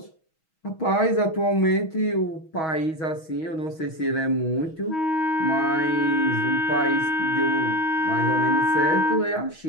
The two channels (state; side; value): late; right; 6.3 ms